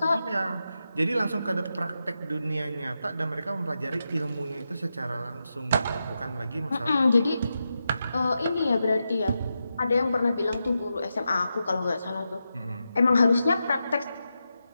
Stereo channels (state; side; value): inverted; both; correlation -0.88